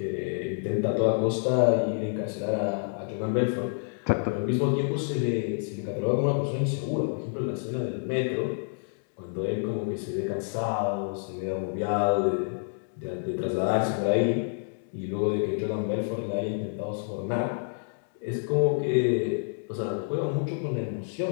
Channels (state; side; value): silent; right; digital silence